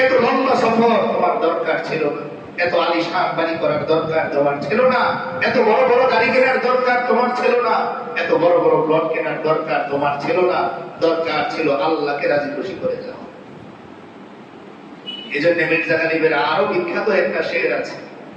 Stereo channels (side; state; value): both; identical; correlation 1.00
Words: এত লম্বা সফর তোমার দরকার ছিল না। এত আলিশান বাড়ি করার দরকার তোমার ছিল না। এত বড় বড় গাড়ি কেনার দরকার তোমার ছিল না। এত বড় বড় প্লট কেনার দরকার তোমার ছিল না। দরকার ছিল আল্লাহকে রাজি খুশি করে যাওয়া। এই জন্য মির্জা গালিবের আরো বিখ্যাত একটা শের আছে,